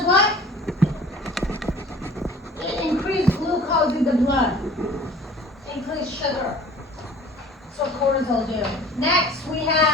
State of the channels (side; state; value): both; normal; correlation 0.47